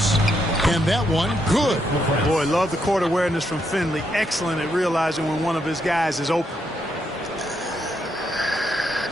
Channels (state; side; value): normal; both; correlation 0.78